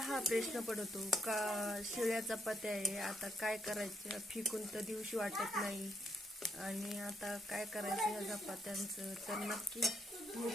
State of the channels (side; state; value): both; normal; correlation 0.76